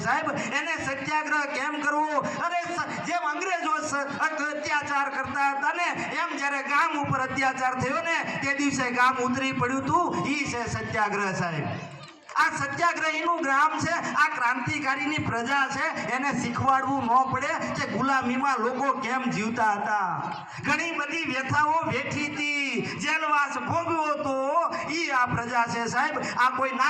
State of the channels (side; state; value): both; identical; correlation 1.00